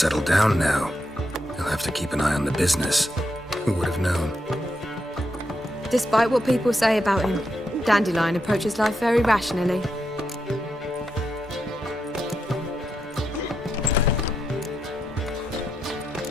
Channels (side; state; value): both; normal; correlation 0.83